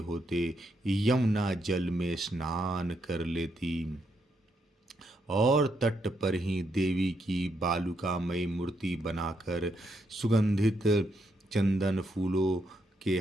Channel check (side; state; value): both; normal; correlation 0.78